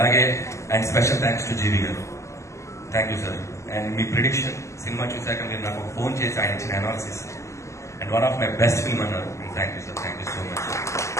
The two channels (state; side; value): late; right; 0.14 ms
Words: and special thanks to GV గారు. Thank you sir. అండ్ మీ ప్రిడిక్షన్ సినిమా చూశాక మీరు నాకు ఫోన్ చేసి ఆయన ఇచ్చిన analysis and one of my best film అన్నారు. Thank you sir, thank you so much.